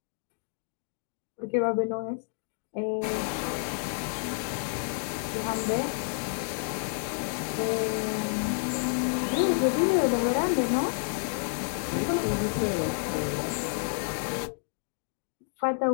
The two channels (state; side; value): silent; right; digital silence